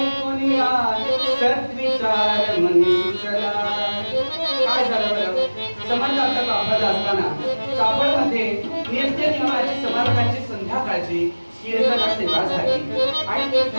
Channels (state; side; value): inverted; both; correlation -1.00